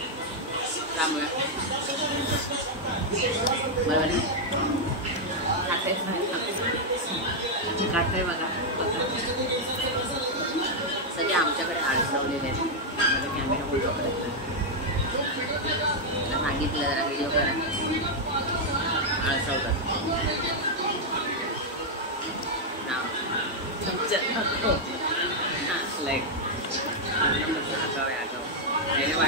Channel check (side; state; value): both; normal; correlation -0.02